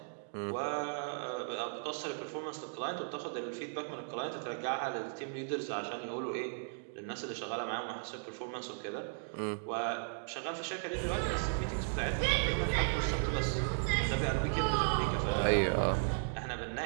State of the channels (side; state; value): left; silent; digital silence